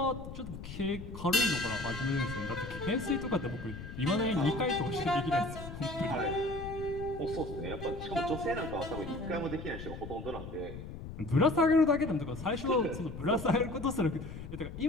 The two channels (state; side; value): noise; left; rumble, 10 dB below the sound